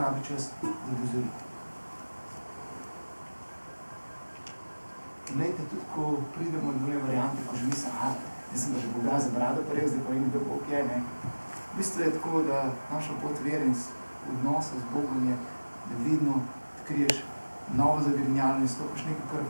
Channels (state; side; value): inverted; both; correlation -1.00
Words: čas, da dozori. Glejte, tudi ko pridemo do variante, ko že mislim, jaz sem pa že Boga za brado parel, zdaj pa in da Bog je, ne. V bistvu je tako, da naša pot vere in odnosa z Bogom je, da vedno odkriješ novo zagrinjalo in stopiš nekaj, kar